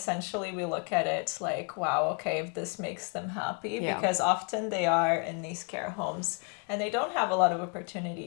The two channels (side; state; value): right; quieter; 36.8 dB